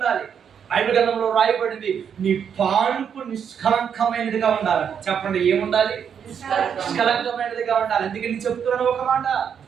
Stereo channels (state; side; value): quieter; left; 7.7 dB